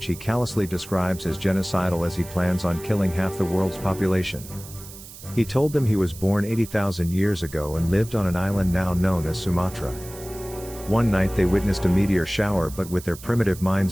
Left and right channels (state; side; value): noise; right; hiss, 16 dB below the sound